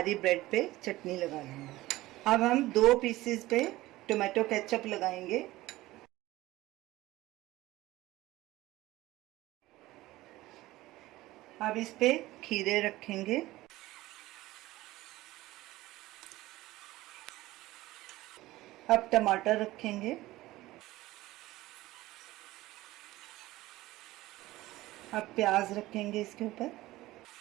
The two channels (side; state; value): left; quieter; 17.6 dB